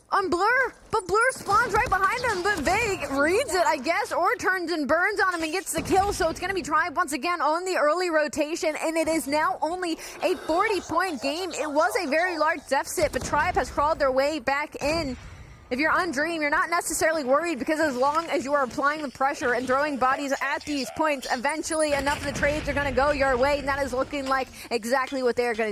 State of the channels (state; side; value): identical; both; correlation 1.00